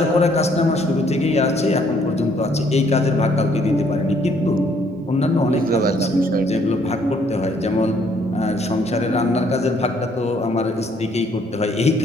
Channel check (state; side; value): normal; both; correlation 0.65